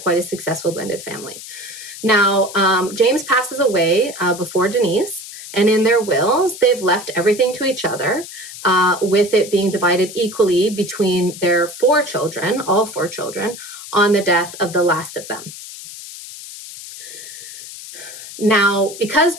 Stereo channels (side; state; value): left; noise; hiss, 13 dB below the sound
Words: a successful blended family. Now, James passes away before Denise, and in their wills, they've left everything to each other, with it being divided equally between their 4 children, all 4 children, on the death of the last of them. Now, because